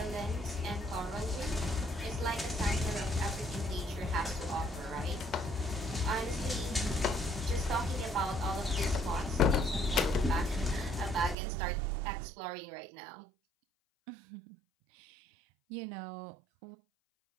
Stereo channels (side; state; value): left; drops out; at 11.4 s